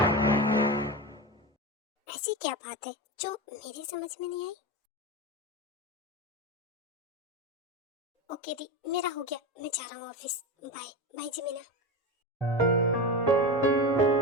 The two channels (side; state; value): both; normal; correlation 0.21